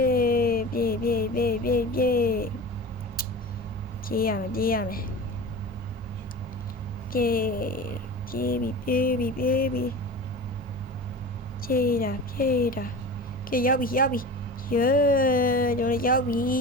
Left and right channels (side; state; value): both; normal; correlation 0.33